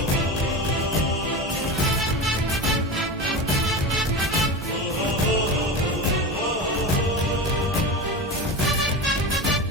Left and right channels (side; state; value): both; normal; correlation 0.24